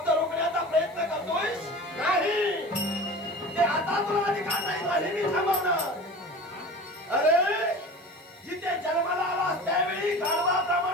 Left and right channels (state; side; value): noise; left; hiss, 29 dB below the sound